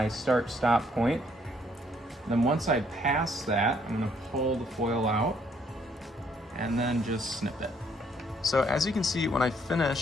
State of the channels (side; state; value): both; normal; correlation 0.67